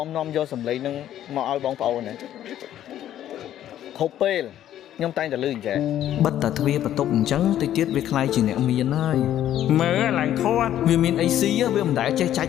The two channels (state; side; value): quieter; right; 11.7 dB